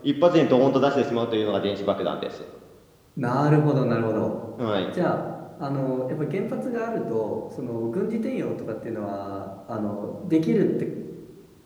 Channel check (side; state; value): both; identical; correlation 1.00